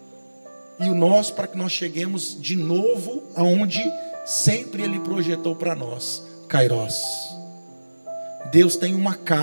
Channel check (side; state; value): both; inverted; correlation -1.00